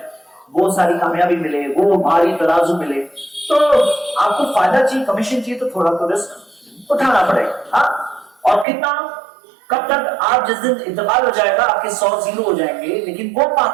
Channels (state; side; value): drops out; left; at 8.7 s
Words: وہ ساری کامیابی ملے، وہ بھاری ترازو ملے. تو آپ کو فائدہ چاہیے، کمیشن چاہیے، تو تھوڑا تو رسک اٹھانا پڑے گا. ہاں اور کتنا؟ کب تک؟ آپ جس دن انتقال ہو جائے گا آپ کے 100 زیرو ہو جائیں گے، لیکن وہ